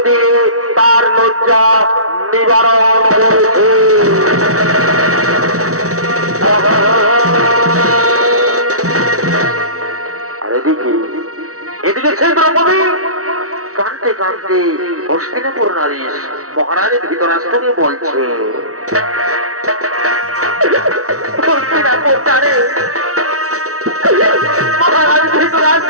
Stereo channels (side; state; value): left; late; 0.65 ms